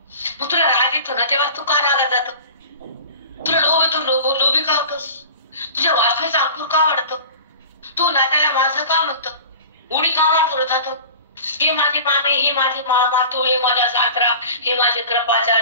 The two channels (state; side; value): inverted; both; correlation -0.39